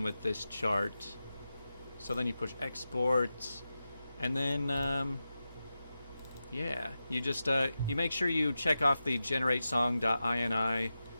with this chart. So then you push export, and then yeah, you just you make sure you check off the generate song.ini,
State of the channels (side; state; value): both; inverted; correlation -0.92